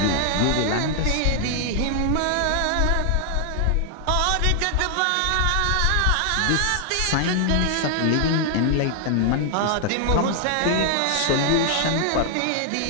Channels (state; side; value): different; both; correlation 0.00